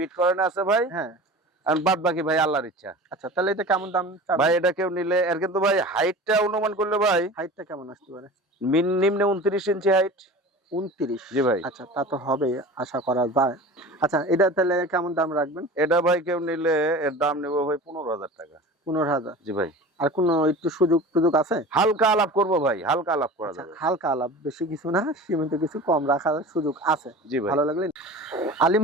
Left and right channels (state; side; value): normal; both; correlation 0.36